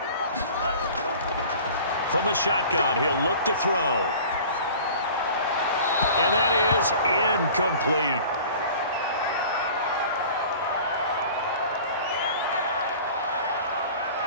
From the shotgun, he'll look to throw. And that is incomplete.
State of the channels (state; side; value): inverted; both; correlation -0.43